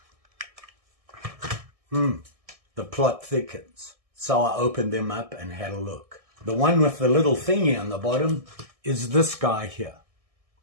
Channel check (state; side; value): late; left; 1.6 ms